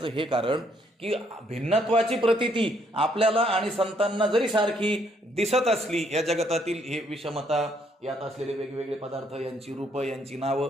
हे कारण, की भिन्नत्वाची प्रतीती आपल्याला आणि संतांना जरी सारखी दिसत असली, या जगतातील हे विषमता, यात असलेले वेगवेगळे पदार्थ, यांची रूपं, यांची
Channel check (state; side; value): normal; both; correlation 0.69